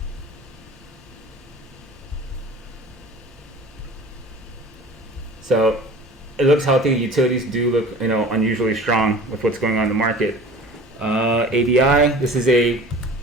So it looks healthy. Utilities do look unusually strong with what's going on in the market. ADI, this is a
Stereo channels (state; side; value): normal; both; correlation 0.42